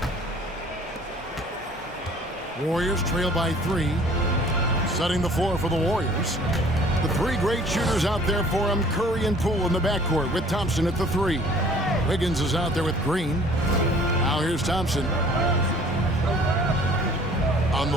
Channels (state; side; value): normal; both; correlation 0.53